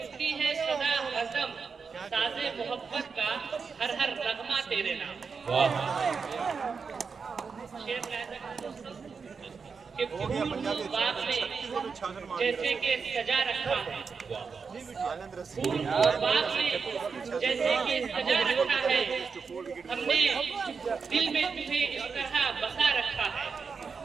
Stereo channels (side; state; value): left; quieter; 5.4 dB